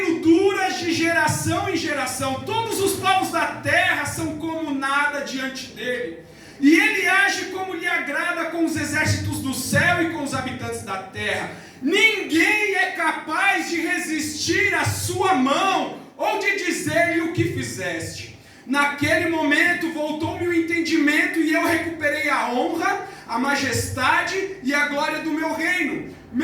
dura de geração em geração, todos os povos da terra são como nada diante dele, e ele age como lhe agrada com os exércitos do céu e com os habitantes da terra. Ninguém é capaz de resistir à sua mão ou de dizer-lhe o que fizeste. Naquele momento voltou-me o entendimento e eu recuperei a honra, a majestade e a glória do meu reino.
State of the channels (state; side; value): identical; both; correlation 1.00